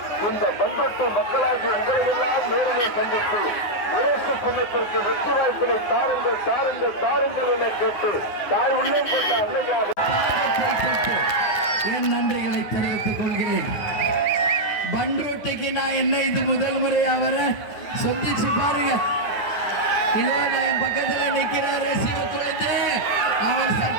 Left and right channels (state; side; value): late; right; 9.5 ms